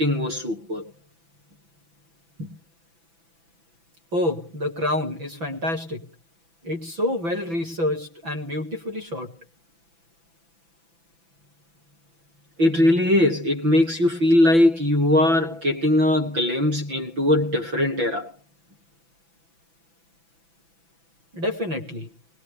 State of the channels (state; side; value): late; left; 6.0 ms